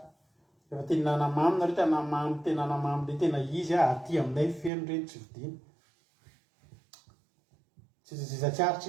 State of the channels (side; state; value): left; drops out; at 4.7 s